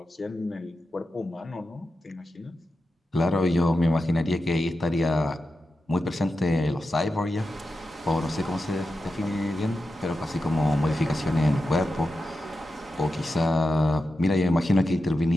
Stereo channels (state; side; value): normal; both; correlation 0.90